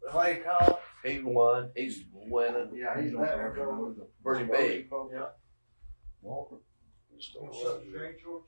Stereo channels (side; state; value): both; inverted; correlation -1.00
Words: Clay Collins. He won. He's winning. Yeah, he's Pretty big. Yeah.